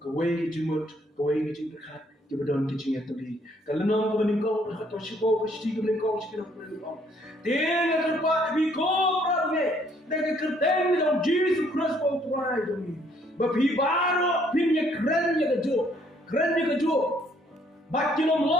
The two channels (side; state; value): both; normal; correlation 0.65